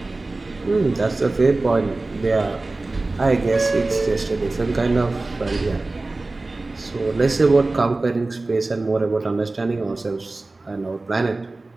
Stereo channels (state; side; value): quieter; left; 3.2 dB